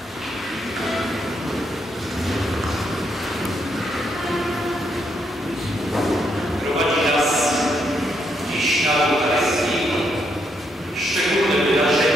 Prowadzi nas dziś na Eucharystii szczególne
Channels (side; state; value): both; normal; correlation 0.77